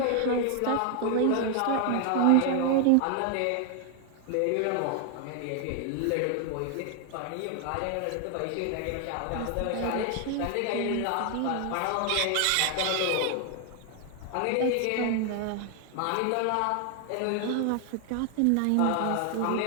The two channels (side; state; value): both; different; correlation 0.00